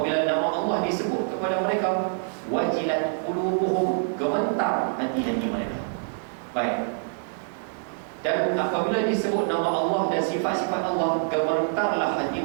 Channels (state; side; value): silent; left; digital silence